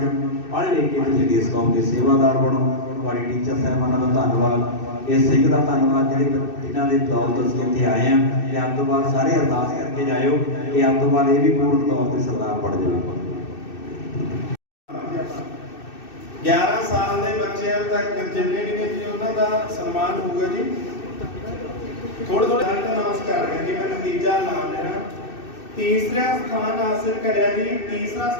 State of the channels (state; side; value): late; right; 2.6 ms